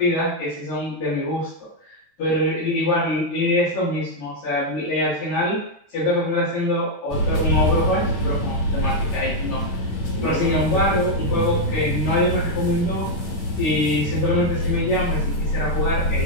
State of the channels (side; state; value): right; late; 8.8 ms